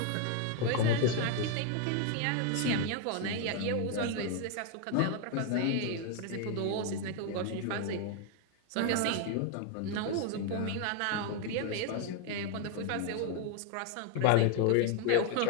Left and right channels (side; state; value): both; different; correlation 0.01